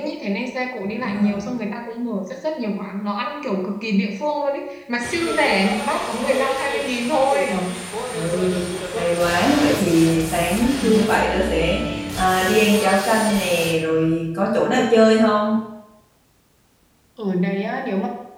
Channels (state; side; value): identical; both; correlation 1.00